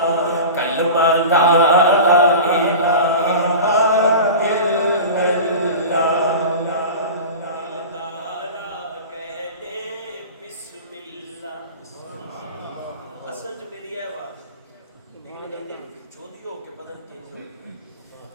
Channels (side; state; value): both; inverted; correlation -0.32